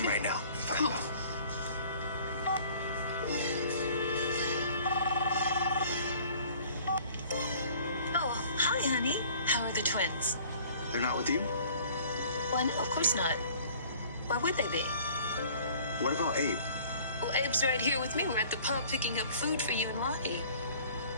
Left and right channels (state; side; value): inverted; both; correlation -0.51